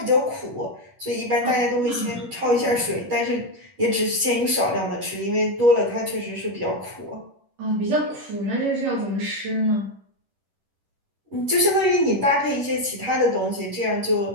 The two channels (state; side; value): late; left; 10 ms